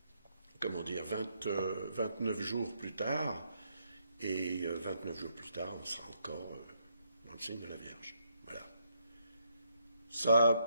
29 jours plus tard. Et 29 jours plus tard, on sera encore dans le signe de la Vierge. Voilà.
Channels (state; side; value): inverted; both; correlation -0.75